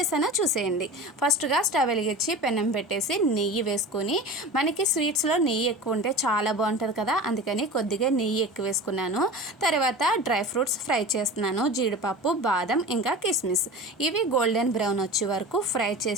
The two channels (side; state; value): both; normal; correlation 0.33